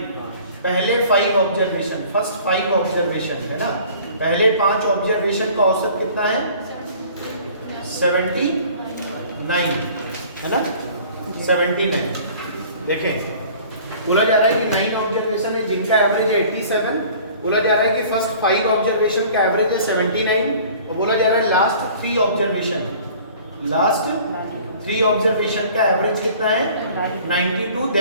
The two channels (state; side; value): inverted; both; correlation -0.49